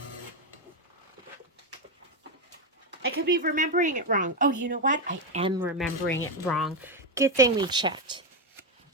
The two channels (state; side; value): normal; both; correlation 0.07